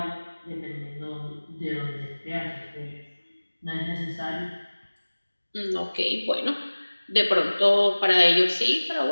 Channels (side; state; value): both; inverted; correlation -1.00